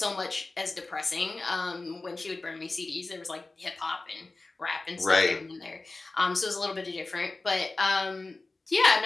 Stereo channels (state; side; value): quieter; right; 3.3 dB